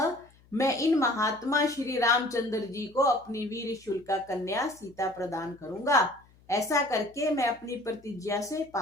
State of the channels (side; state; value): left; noise; hum, 29 dB below the sound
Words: मैं इन महात्मा श्री रामचंद्र जी को अपनी वीर शुल्का कन्या सीता प्रदान करूंगा। ऐसा करके मैं अपनी प्रतिज्ञा से